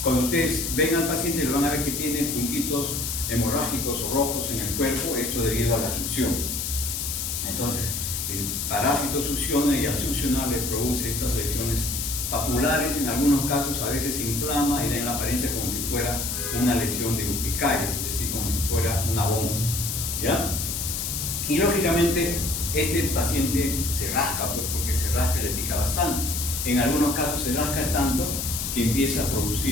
cuando ustedes ven al paciente, lo van a ver que tiene puntitos hemorrágicos o rojos en el cuerpo, esto debido a la succión. Entonces, el parásito succiona y al succionar le produce estas lesiones papulares, en algunos casos a veces se inflama y da en la apariencia como si fuera una lesión de urticaria, es decir, como si fuera una bomba, ¿ya? Y lógicamente este paciente se rasca, pues, porque se rasca y le pica bastante. En algunos casos se rasca tanto que empieza a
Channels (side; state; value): left; noise; hiss, 3 dB below the sound